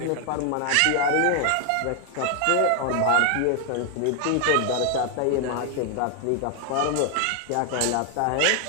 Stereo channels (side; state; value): both; different; correlation 0.00